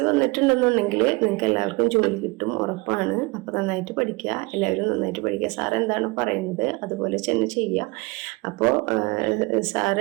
വന്നിട്ടുണ്ടെന്നുണ്ടെങ്കിൽ നിങ്ങൾക്ക് എല്ലാവർക്കും ജോലി കിട്ടും, ഉറപ്പാണ്. അപ്പോൾ നന്നായിട്ട് പഠിക്കുക, എല്ലാവരും നന്നായിട്ട് പഠിക്കുക. സാർ എന്താണ് പറയുന്നത് അതുപോലെ തന്നെ ചെയ്യുക. അപ്പോൾ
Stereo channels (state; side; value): quieter; left; 25.6 dB